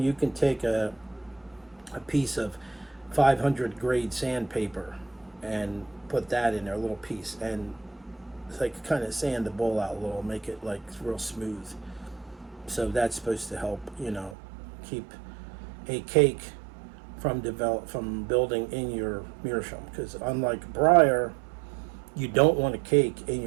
you can take a piece of 500 grade sandpaper and put that in there, a little piece, and it's like kind of sand the bowl out a little, make it like real smooth. So that's supposed to help, keep a cake from building in your Meerschaum. Because unlike briar, you don't want a cake in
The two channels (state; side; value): drops out; left; at 14.4 s